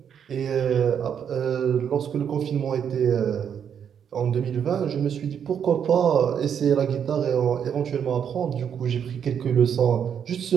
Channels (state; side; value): quieter; left; 8.1 dB